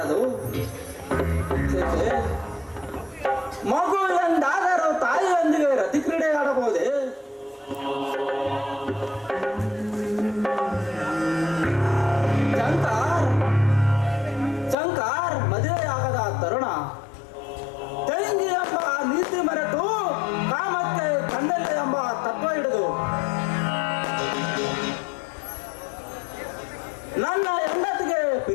ಮಗು ಎಂದಾದರೂ ತಾಯಿಯೊಂದಿಗೆ ರತಿ ಕ್ರೀಡೆ ಆಡಬಹುದೇ? ಶಂಕರ್ ಮದುವೆಯಾಗದ ತರುಣ ತಂಗಿ ಎಂಬ ನೀತಿ ಮರೆತು ಕಾಮಕ್ಕೆ ಕಂಡಲ್ಲ ಎಂಬ ತತ್ವ ಹಿಡಿದು ನನ್ನ ಹೆಂಡತಿಗೆ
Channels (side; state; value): right; drops out; at 14.8 s